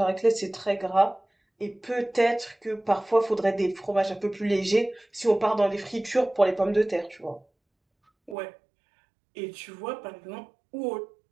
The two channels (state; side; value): drops out; left; at 8.3 s